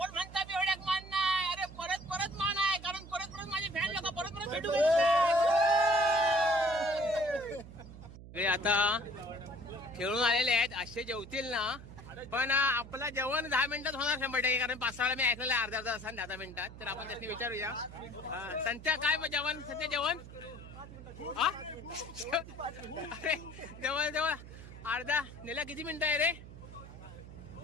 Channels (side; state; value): right; noise; hum, 15 dB below the sound